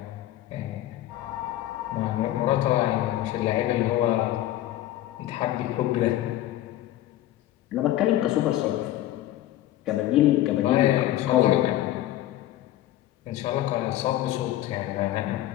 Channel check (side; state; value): right; quieter; 14.1 dB